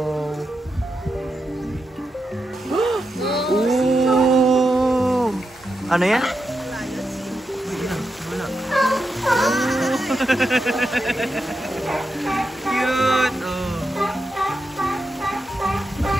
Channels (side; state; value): both; normal; correlation 0.87